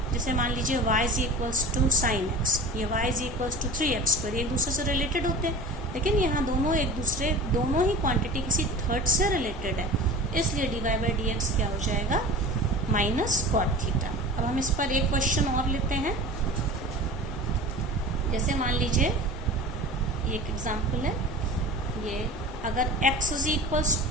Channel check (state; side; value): normal; both; correlation 0.37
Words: जैसे मान लीजिए y is equals to sine x, ये y is equals to 3x², एक दूसरे से रिलेटेड होते हैं। लेकिन यहाँ दोनों ही क्वांटिटी किसी थर्ड से रिलेटेड है, इसलिए dy/dx क्या हो जाएगा? Minus cot theta. अब हम इस पर एक क्वेश्चन और लेते हैं। जैसे मान लीजिए एक एग्जाम्पल है, ये अगर x इज इक्वल्स